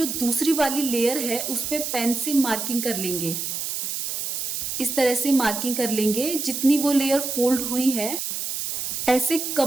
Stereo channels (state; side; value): noise; right; hiss, 3 dB below the sound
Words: दूसरी वाली लेयर है उस पर पेन से मार्किंग कर लेंगे। इस तरह से मार्किंग कर लेंगे जितनी वो लेयर फोल्ड हुई है, ऐसे